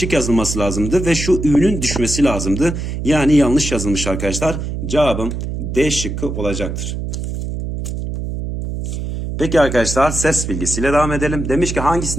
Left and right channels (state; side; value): noise; right; hum, 5 dB below the sound